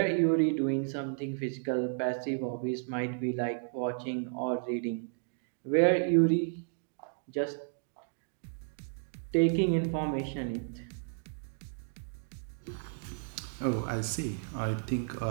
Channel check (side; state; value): left; silent; digital silence